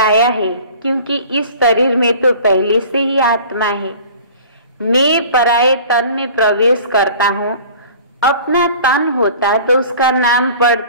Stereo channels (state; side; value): inverted; both; correlation -0.45